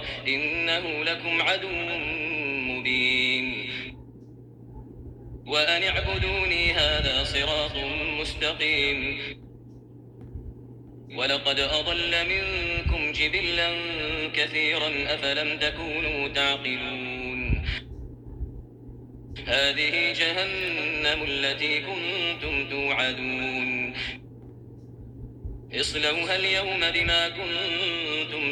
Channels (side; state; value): both; identical; correlation 1.00